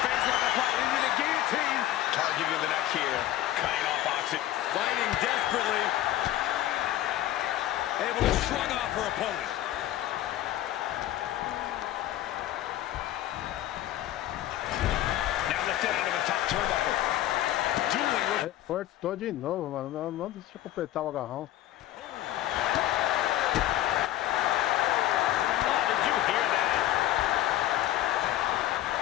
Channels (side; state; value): right; quieter; 13.8 dB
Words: face lock applied into the guillotine. Targeting the neck here. Cutting off oxygen. Fighting desperately. Able to shrug off her opponent. Now lifted out of the top turnbuckle. Dueling with... Cortou de novo, mano. Não deixa eu completar o agarrão. Oh, did you hear that?